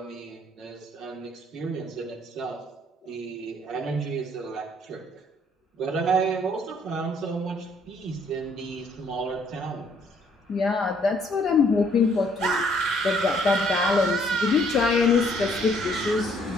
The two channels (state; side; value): normal; both; correlation 0.64